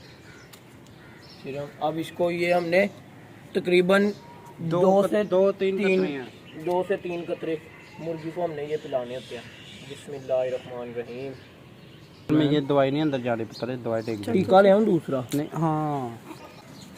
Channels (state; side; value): identical; both; correlation 1.00